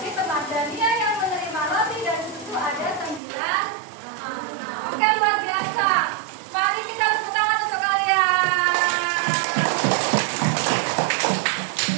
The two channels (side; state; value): left; drops out; at 3.2 s